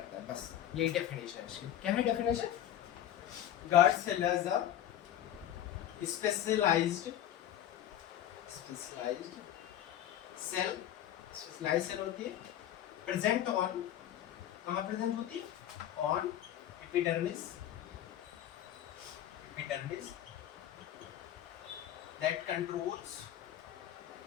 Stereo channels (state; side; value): quieter; right; 11.6 dB